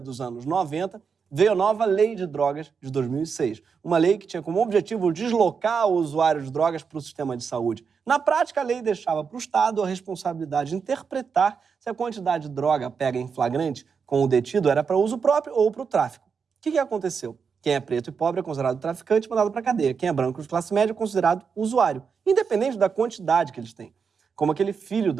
dos anos 90, veio a nova Lei de Drogas de 2006. Uma lei que tinha como objetivo deslocar o usuário de drogas para o sistema de saúde. Na prática, a lei deixava para o Estado a responsabilidade de interpretar se a quantidade de droga pega em flagrante com o detido era para uso próprio ou para o tráfico. O que aconteceu? Quem é preto e pobre é considerado traficante e mandado para a cadeia. Quem é branco de classe média é considerado usuário, independente da quantidade que eles têm. Como aquele filho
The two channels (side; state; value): left; quieter; 5.9 dB